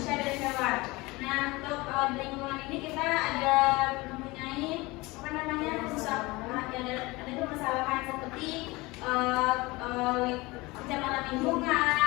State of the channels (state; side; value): quieter; right; 22.5 dB